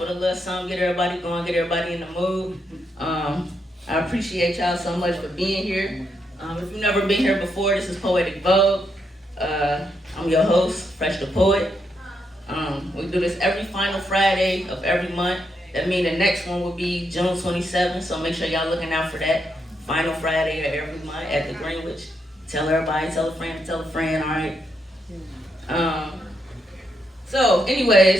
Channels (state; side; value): normal; both; correlation 0.80